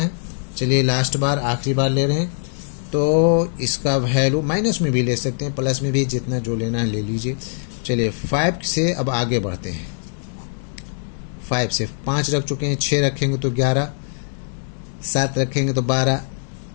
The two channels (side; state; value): right; silent; digital silence